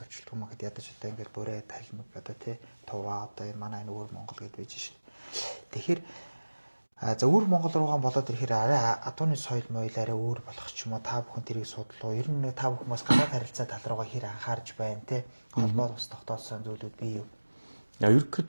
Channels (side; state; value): both; inverted; correlation -1.00